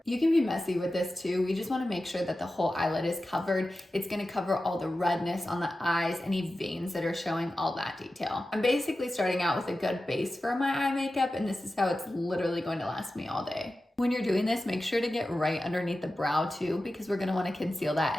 You can be messy with this too. We just want to make sure that the whole eyelid is covered. It's going to cover all the redness on the eyes, any veins that are showing, all that detail. I'm basically starting out with a good base for my eye makeup, and this is how it's literally going to last me all day. When you're doing this, make sure to get right underneath the brow too, because we're gonna wanna conceal that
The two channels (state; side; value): normal; both; correlation 0.94